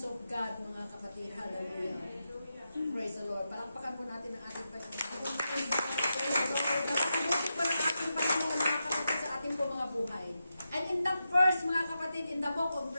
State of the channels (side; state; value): both; inverted; correlation -0.88